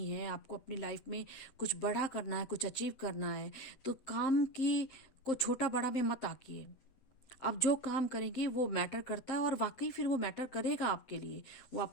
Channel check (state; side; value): late; right; 8.0 ms